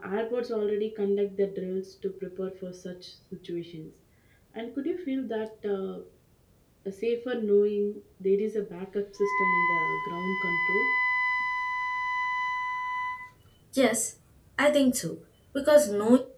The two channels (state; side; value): identical; both; correlation 1.00